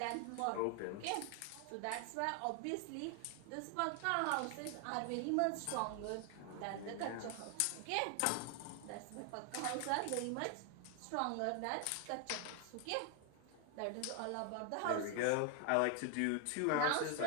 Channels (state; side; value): different; both; correlation 0.00